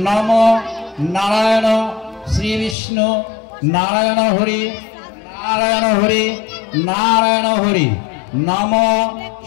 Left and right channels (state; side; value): drops out; right; at 2.8 s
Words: নম নারায়ণ শ্রী বিষ্ণু নারায়ণ হরি নারায়ণ হরি নারায়ণ হরি নম